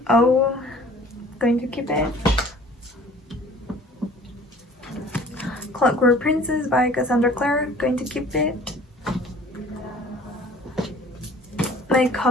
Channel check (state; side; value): normal; both; correlation 0.50